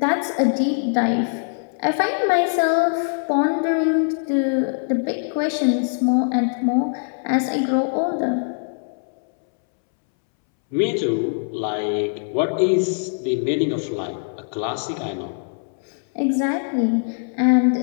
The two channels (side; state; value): right; silent; 64 dB below the other